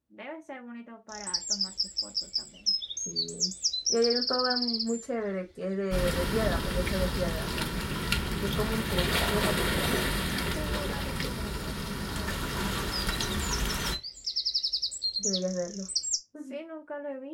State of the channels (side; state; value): both; identical; correlation 1.00